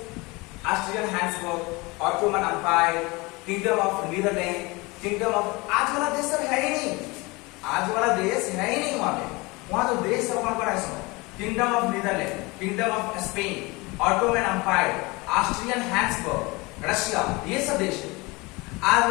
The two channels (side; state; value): right; quieter; 24.6 dB